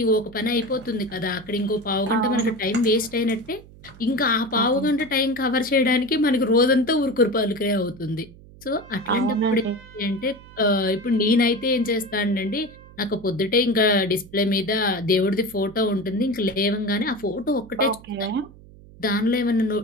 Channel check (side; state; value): right; noise; hum, 21 dB below the sound